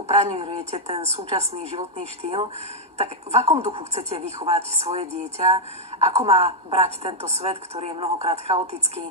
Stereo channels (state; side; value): normal; both; correlation -0.02